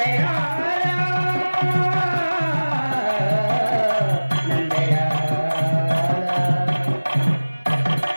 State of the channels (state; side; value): inverted; both; correlation -1.00